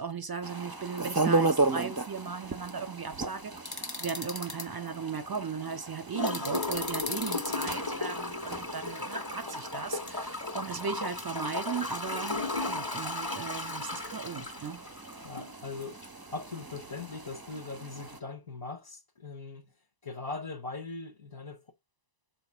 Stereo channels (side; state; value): left; late; 1.0 ms